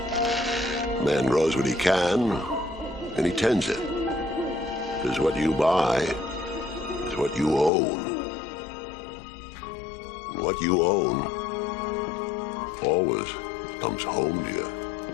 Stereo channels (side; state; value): right; drops out; at 7.7 s